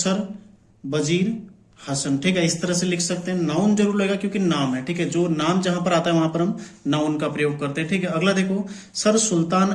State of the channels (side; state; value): both; identical; correlation 1.00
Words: बजीर हसन, ठीक है, इस तरह से लिख सकते हैं। नाउन जरूर लगेगा क्योंकि नाम है, ठीक है, जो नाम जहां पर आता है वहां पर हम नाउन का प्रयोग करते हैं। ठीक है, अगला देखो सर सुल्तान